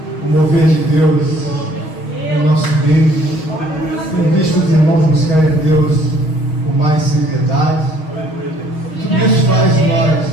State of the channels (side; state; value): right; late; 6.3 ms